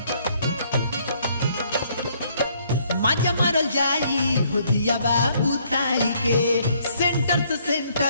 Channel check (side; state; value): both; inverted; correlation -0.66